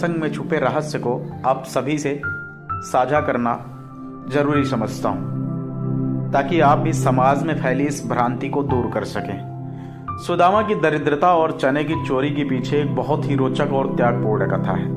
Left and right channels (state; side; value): identical; both; correlation 1.00